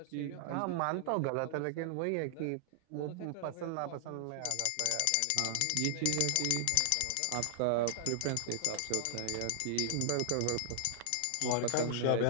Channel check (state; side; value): different; both; correlation -0.01